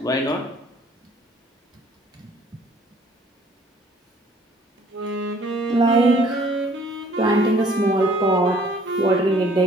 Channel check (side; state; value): both; normal; correlation 0.57